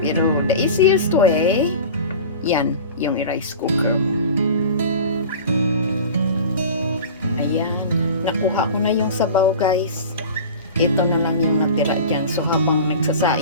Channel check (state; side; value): inverted; both; correlation -0.36